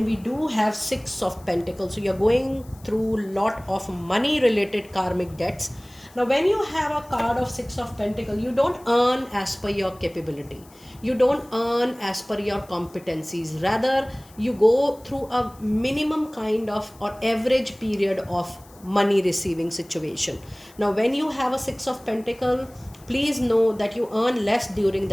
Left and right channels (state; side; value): noise; left; hiss, 26 dB below the sound